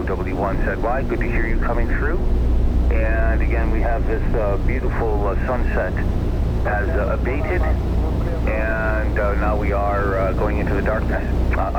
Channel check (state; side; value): identical; both; correlation 1.00